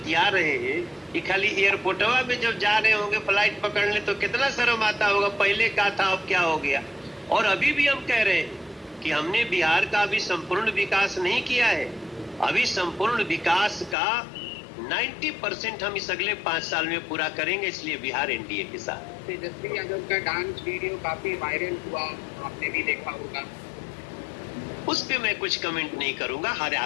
रहे हैं कि खाली एयरपोर्टवा में जब जा रहे होंगे फ्लाइट पकड़ने तो कितना शर्म आता होगा, पहले क्या था अब क्या हो गया। और अभी भी हम कह रहे हैं कि हमने बिहार का अभी संपूर्ण विकास नहीं किया है। अभी संपूर्ण विकास का 90% हम इस अगले 5 साल में पूरा करेंगे, इसलिए बिहार एनडीए के साथ। तेजस्वी यादव का डांस वीडियो काफी वायरल हुआ, आपने भी देखा होगा। उस पे मैं कुछ कमेंट नहीं करूंगा। हर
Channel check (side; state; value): right; drops out; at 14.0 s